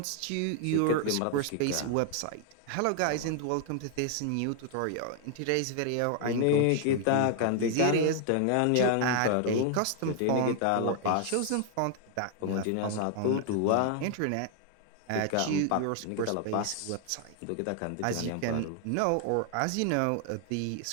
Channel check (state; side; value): different; both; correlation 0.00